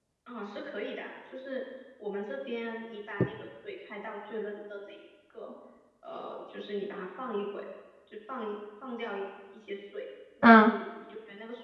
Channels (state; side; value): identical; both; correlation 1.00